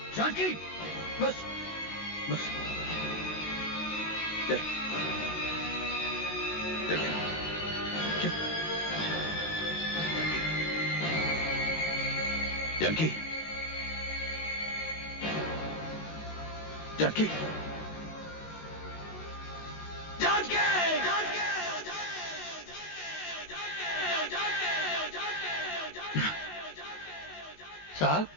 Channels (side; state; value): right; late; 19 ms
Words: जानकी, बस, बस, चल, चल, चल, जानकी, जानकी, जानकी, साहब,